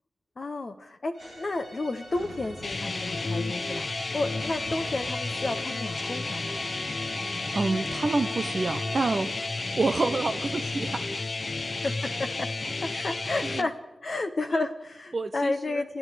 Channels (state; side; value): normal; both; correlation 0.93